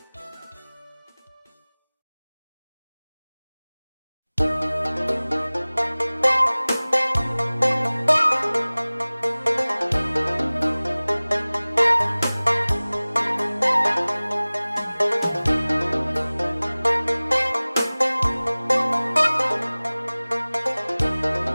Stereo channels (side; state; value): both; inverted; correlation -0.99